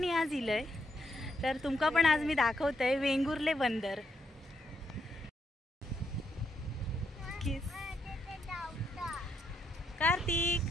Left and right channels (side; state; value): both; normal; correlation 0.78